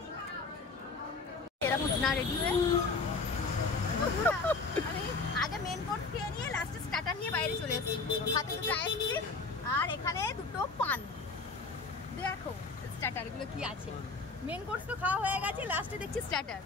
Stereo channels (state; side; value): quieter; right; 4.1 dB